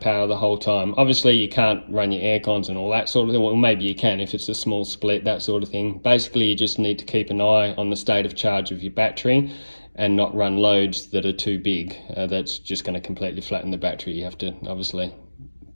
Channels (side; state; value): both; inverted; correlation -1.00